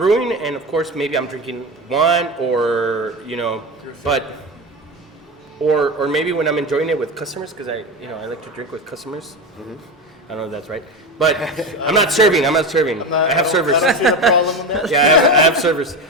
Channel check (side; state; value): both; normal; correlation 0.21